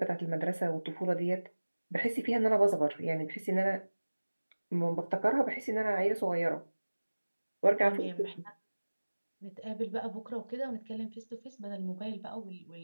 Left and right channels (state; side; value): inverted; both; correlation -1.00